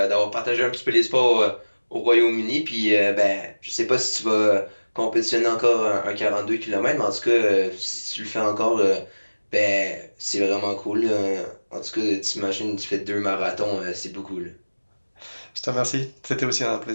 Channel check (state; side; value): inverted; both; correlation -1.00